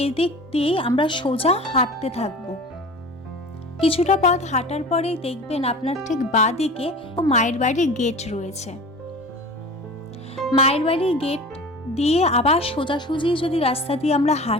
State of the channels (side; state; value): both; normal; correlation 0.37